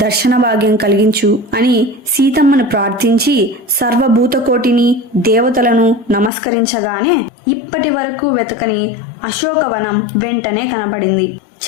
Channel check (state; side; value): drops out; right; at 6.3 s